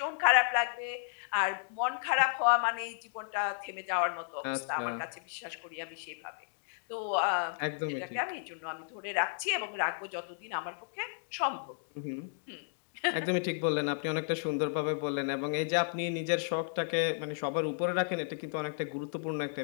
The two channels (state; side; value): silent; right; digital silence